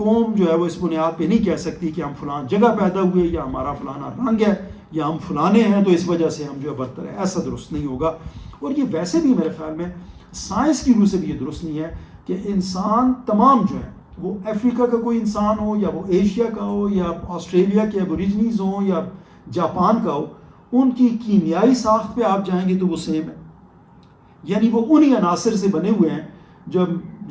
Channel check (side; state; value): both; identical; correlation 1.00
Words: جو ہے وہ اس بنیاد پہ نہیں کہہ سکتی کہ ہم فلان جگہ پیدا ہوئے، یا ہمارا فلانا رنگ ہے، یا ہم فلانے ہیں تو اس وجہ سے ہم جو ہے برتر ہے، ایسا درست نہیں ہوگا۔ اور یہ ویسے بھی میرے خیال میں سائنس کی روح سے بھی یہ درست نہیں ہے کہ انسان تمام جو ہے، وہ افریقہ کا کوئی انسان ہو، یا وہ ایشیا کا ہو، یا آسٹریلیا کے ایبوریجنیز ہوں، یا جاپان کا ہو، ان کی کیمیائی ساخت پہ آپ جائیں گے تو وہ سیم ہے، یعنی وہ انہی عناصر سے بنے ہوئے ہیں